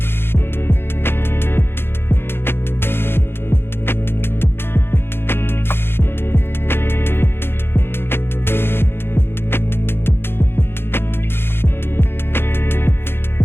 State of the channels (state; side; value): late; right; 0.11 ms